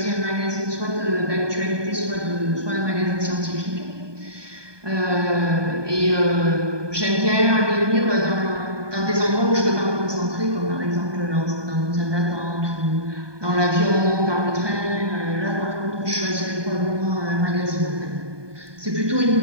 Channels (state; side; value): late; left; 1.2 ms